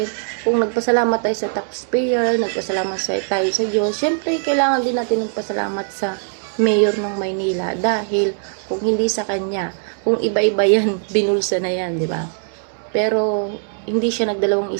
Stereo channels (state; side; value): silent; left; digital silence